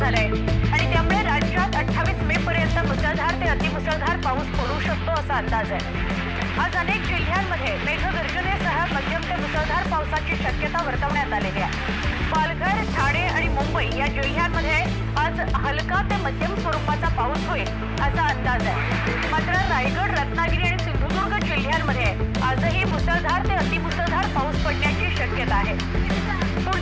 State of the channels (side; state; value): both; identical; correlation 1.00